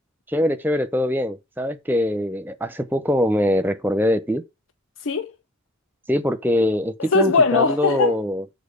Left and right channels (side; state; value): both; normal; correlation 0.43